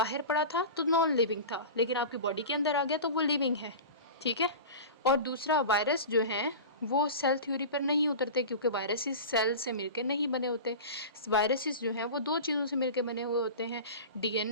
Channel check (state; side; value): inverted; both; correlation -0.31